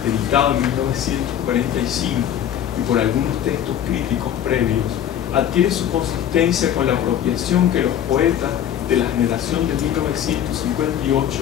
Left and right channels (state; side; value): quieter; right; 10.2 dB